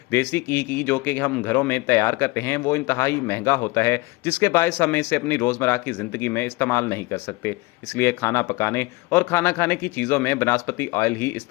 देसी घी की जो कि हम घरों में तैयार करते हैं, वो इंतहाई महंगा होता है, जिसके बायस हम इसे अपनी रोज़मर्रा की ज़िंदगी में इस्तेमाल नहीं कर सकते। इसलिए खाना पकाने और खाना खाने की चीज़ों में बनास्पति ऑयल ही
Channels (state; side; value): quieter; right; 22.9 dB